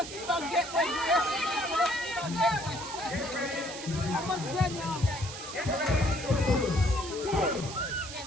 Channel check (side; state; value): right; noise; hiss, 10 dB below the sound